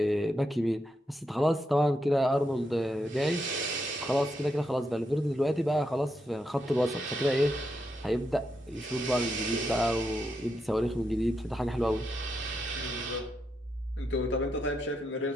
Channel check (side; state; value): both; normal; correlation 0.83